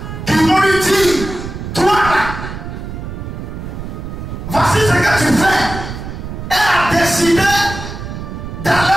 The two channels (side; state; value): right; noise; rumble, 8 dB below the sound